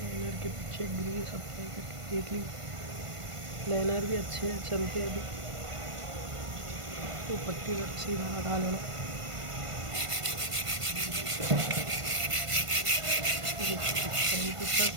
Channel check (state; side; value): late; left; 1.5 ms